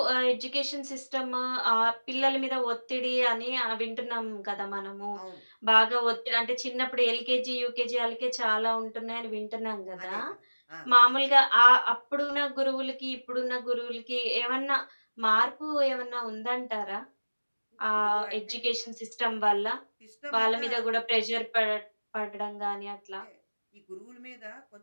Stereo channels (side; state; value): both; inverted; correlation -1.00